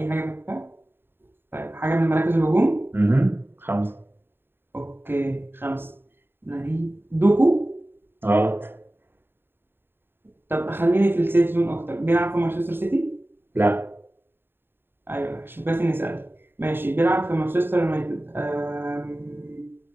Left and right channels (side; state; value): left; late; 0.10 ms